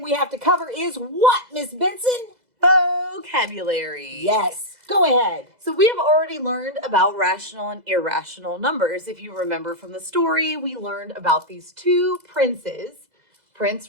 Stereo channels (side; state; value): left; late; 2.0 ms